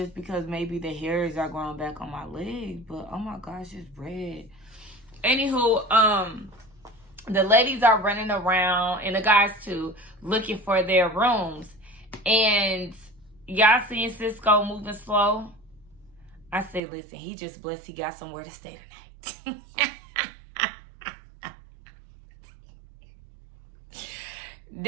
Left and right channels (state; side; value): drops out; left; at 16.8 s